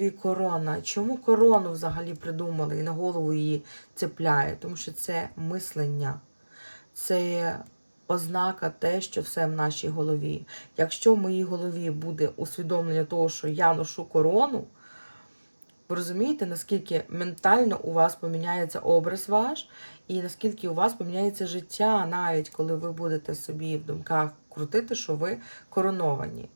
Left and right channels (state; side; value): inverted; both; correlation -1.00